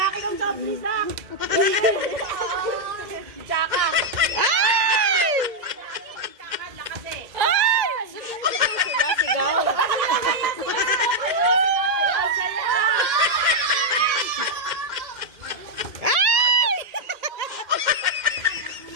ng soft drinks lang. Tsaka. Sigaw.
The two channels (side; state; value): left; late; 2.1 ms